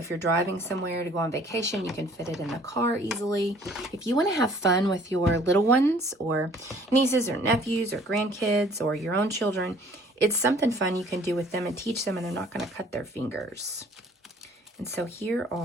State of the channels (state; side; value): normal; both; correlation 0.55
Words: you're driving somewhere to go on vacation, you can fit it in the car easily. If you want to have fun with your little ones or nieces or nephews or grandkids or your own children, it's something fun you can do with them and teach them, and they're not going to cut their fingers. And so here